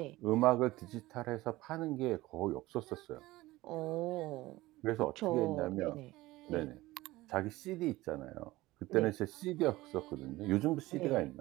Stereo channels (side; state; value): left; quieter; 18.5 dB